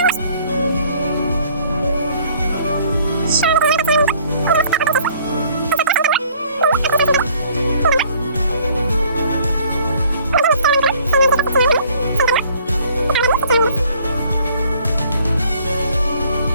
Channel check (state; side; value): inverted; both; correlation -0.58